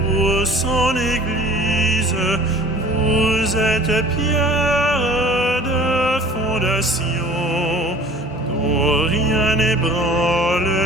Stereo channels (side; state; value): both; normal; correlation 0.46